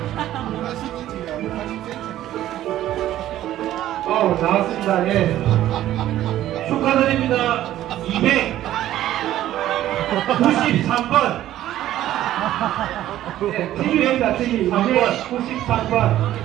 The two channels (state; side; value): quieter; left; 13.2 dB